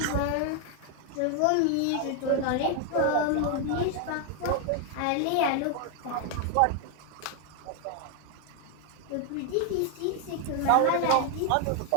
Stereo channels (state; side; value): different; both; correlation 0.01